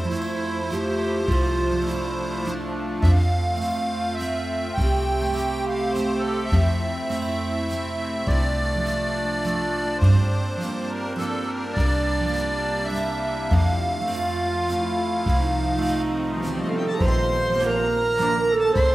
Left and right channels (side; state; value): both; normal; correlation 0.96